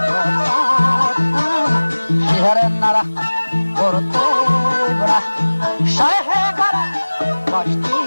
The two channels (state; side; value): inverted; both; correlation -1.00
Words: Shiarenara Porte Bara Shayhed Bara